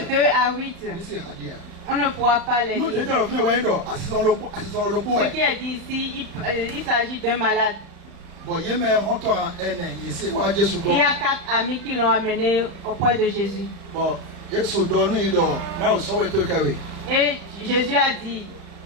2 à 8. On ne pourra pas les lire. Ce qui est dit ici, il s'agit d'un malade. Il y a 4 amis qui l'ont amené auprès de Jésus. Et Jésus a dit,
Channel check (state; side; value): late; left; 35 ms